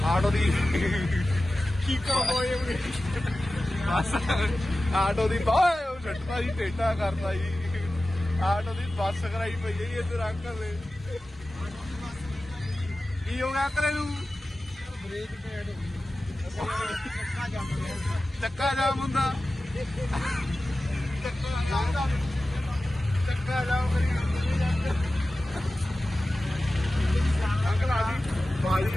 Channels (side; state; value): both; normal; correlation 0.95